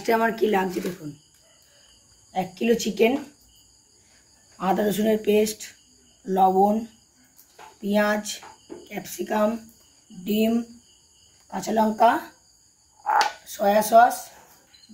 আমার কি লাগছে দেখুন, 1 কিলো চিকেন, আদা রসুনের পেস্ট, লবণ, পেঁয়াজ, ক্যাপসিকাম, ডিম, কাঁচা লঙ্কা, soya sauce,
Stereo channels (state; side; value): identical; both; correlation 1.00